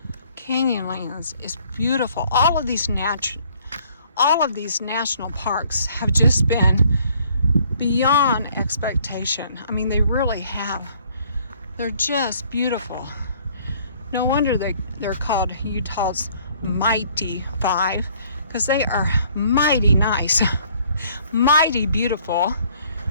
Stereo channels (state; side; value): inverted; both; correlation -0.60